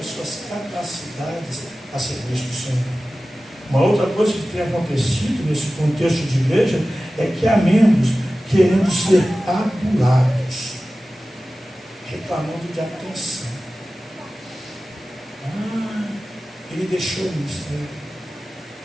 suas capacidades a serviço do Senhor. Uma outra coisa que tem acontecido nesse contexto de igreja é que há membros querendo ser adulados, reclamando de atenção. Ele deixou o ministério.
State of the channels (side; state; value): both; normal; correlation 0.96